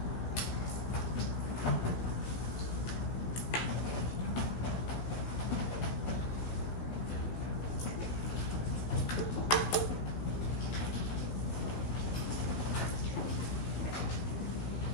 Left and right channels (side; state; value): right; late; 16 ms